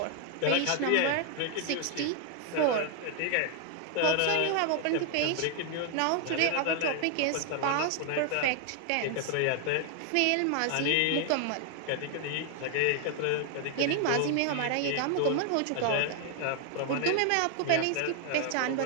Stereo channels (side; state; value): both; different; correlation 0.00